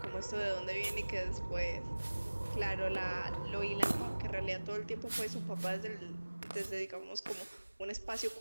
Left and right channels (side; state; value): both; inverted; correlation -1.00